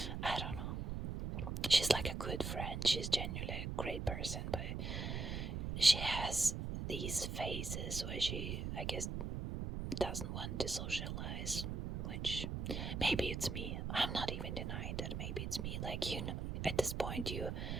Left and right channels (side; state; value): right; noise; rumble, 3 dB below the sound